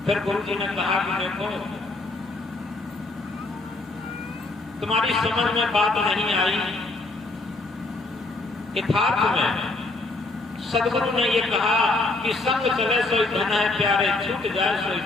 फिर गुरु जी ने कहा कि देखो तुम्हारी समझ में बात नहीं आई। यथार्थ में सदगुरु ने ये कहा कि संग चले सोई धन है प्यारे, छूट जाए सोई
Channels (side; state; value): right; quieter; 3.2 dB